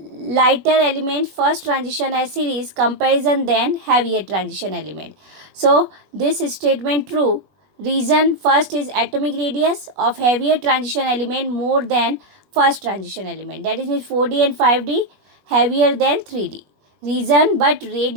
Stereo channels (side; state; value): left; late; 20 ms